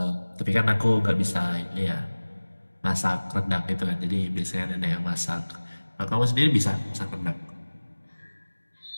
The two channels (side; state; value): both; inverted; correlation -1.00